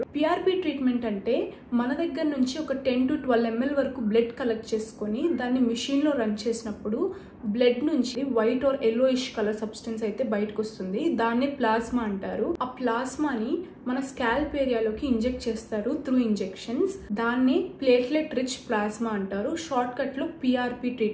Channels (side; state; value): both; identical; correlation 1.00